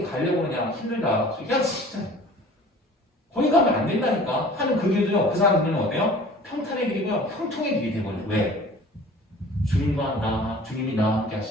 가려고 그러냐 힘들다. 야 진짜 거기 가면 안 된다니까 하는 그 길도요. 그 사람들은 어때요? 평탄의 길이고요. 형통의 길이 되거든요. 왜? 주님이 나와 함께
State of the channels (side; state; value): both; normal; correlation 0.46